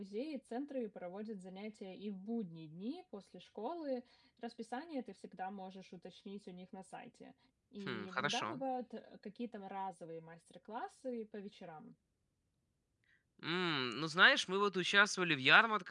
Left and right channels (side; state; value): both; identical; correlation 1.00